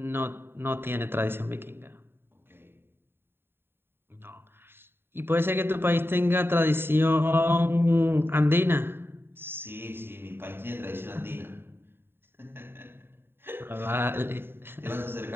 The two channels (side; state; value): left; late; 0.11 ms